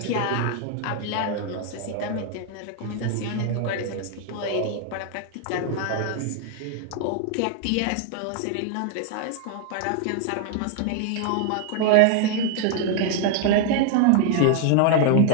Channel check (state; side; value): different; both; correlation 0.00